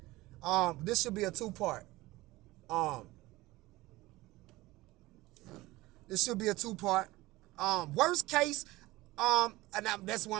This should be a two-part. Um, this should be a two-part. Worst case, and that's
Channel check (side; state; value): left; quieter; 19.3 dB